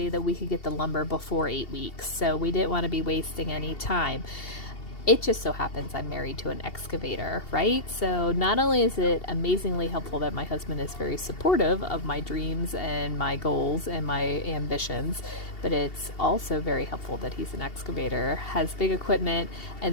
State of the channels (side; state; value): right; late; 2.7 ms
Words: that we could get the lumber before 8 weeks. So we didn't want to be wasting any time. It just so happens I'm married to an excavator, right? So not only is it amazingly helpful that my husband is very supportive of my dreams and my goals and my ambitions, but it's also very helpful that he's an excavator, has big equipment,